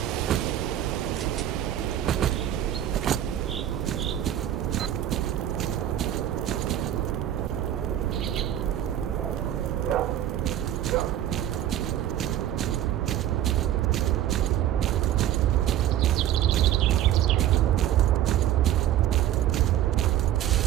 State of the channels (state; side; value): quieter; left; 11.8 dB